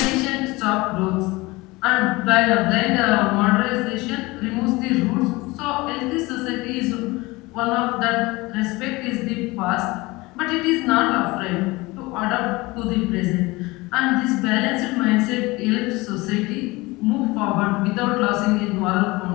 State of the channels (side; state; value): right; quieter; 22.2 dB